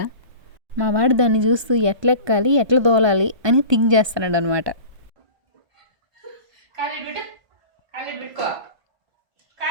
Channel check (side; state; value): left; late; 1.3 ms